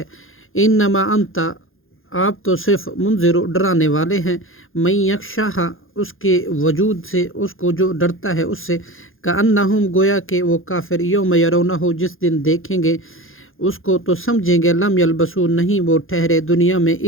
انما انت آپ تو صرف منذر ڈرانے والے ہیں من یخشاہا اس کے وجود سے اس کو جو ڈرتا ہے اس سے کأنہم گویا کہ وہ کافر یوم یرونہ جس دن دیکھیں گے اس کو تو سمجھیں گے لم یلبسو نہیں وہ ٹھہرے دنیا میں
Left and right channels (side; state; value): right; late; 0.60 ms